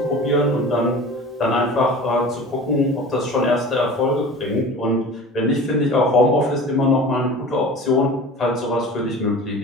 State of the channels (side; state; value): both; normal; correlation 0.38